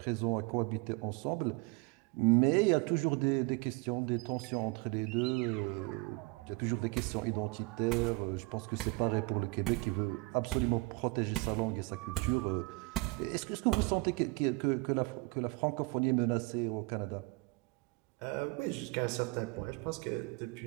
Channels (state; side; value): quieter; left; 25.7 dB